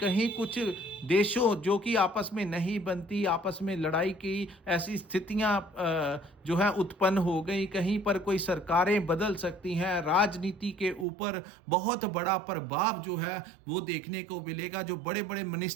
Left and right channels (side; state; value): left; drops out; at 11.1 s